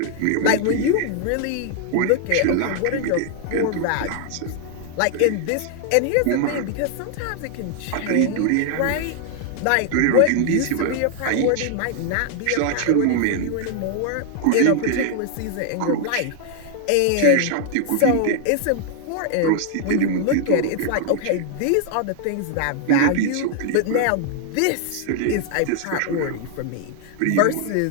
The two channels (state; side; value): different; both; correlation 0.00